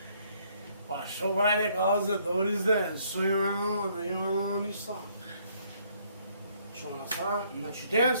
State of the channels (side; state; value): both; inverted; correlation -0.66